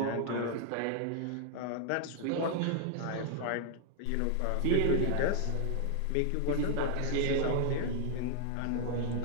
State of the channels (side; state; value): both; different; correlation 0.00